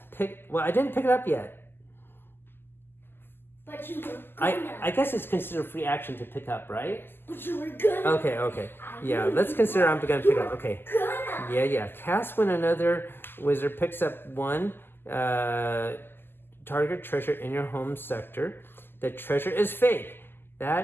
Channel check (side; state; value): right; late; 0.10 ms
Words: well, I didn't pick it up yet. But you were gonna. I guess it's considered free action to pick up, right? But you were gonna. Okay. Yeah, let's consider I'm gonna pick up. Okay. Gonna. Yeah. Cast when another wizard picks up 1 target treasure in your home sector. The treasure is fake.